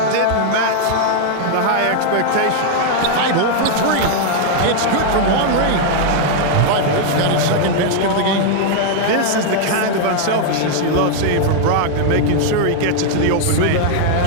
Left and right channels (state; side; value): different; both; correlation 0.00